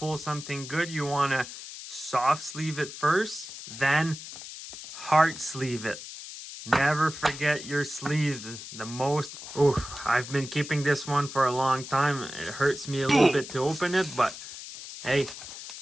something good, you want to soft sleeve it first, then hard sleeve it. Never forget your sleeves. The most... Oof, I've been keeping this one for a long time. It hurts me a little bit to open it, but hey,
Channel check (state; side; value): noise; left; hiss, 12 dB below the sound